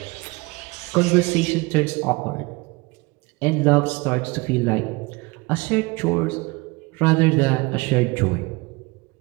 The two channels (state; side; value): quieter; left; 24.7 dB